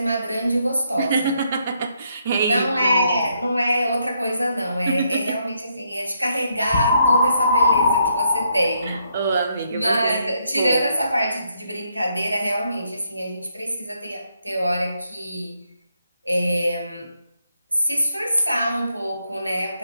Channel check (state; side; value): inverted; both; correlation -0.75